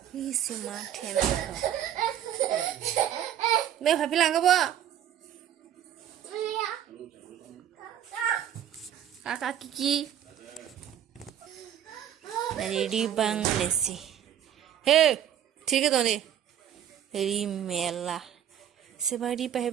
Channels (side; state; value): left; quieter; 10.4 dB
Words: Easy Martin. No happy langaba. Kiki. Ready bang lessy. Hey, take it on it. Rimella. Somebody by